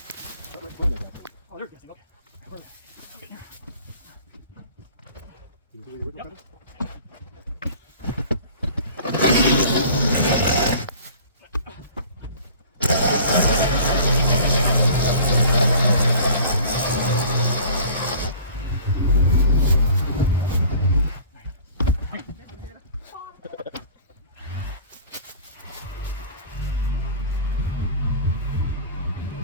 Oh, there's gas tank. Okay. Can you see the original Yep. pedal?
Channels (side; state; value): both; inverted; correlation -0.45